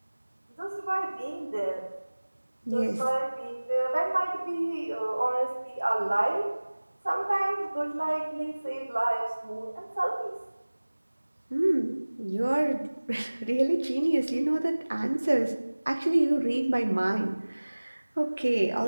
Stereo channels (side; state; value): both; inverted; correlation -1.00